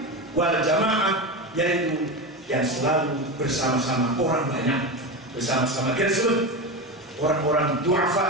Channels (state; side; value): normal; both; correlation 0.20